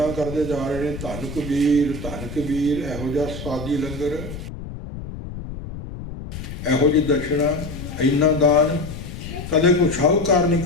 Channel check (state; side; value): noise; left; rumble, 10 dB below the sound